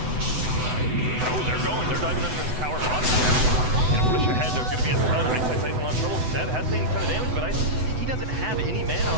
Oh, they're going. They're diving under this tower bottom. Gonna push ahead. There's gonna be a ton. Ice in a lot of trouble. Seb has taken a ton of damage, but he doesn't have any mana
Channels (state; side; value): late; left; 7.9 ms